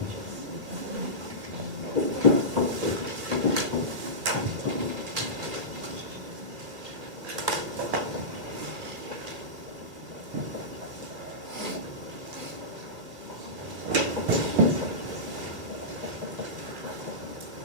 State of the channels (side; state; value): left; late; 2.6 ms